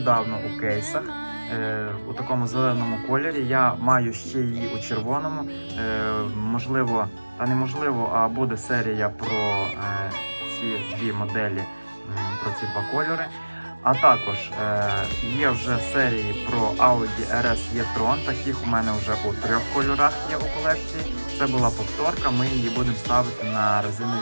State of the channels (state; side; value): inverted; both; correlation -1.00